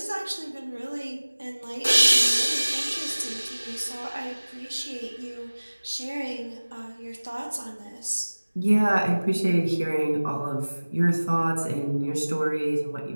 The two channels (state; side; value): inverted; both; correlation -1.00